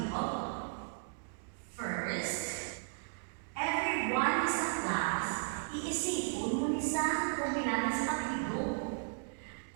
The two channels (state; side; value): silent; left; digital silence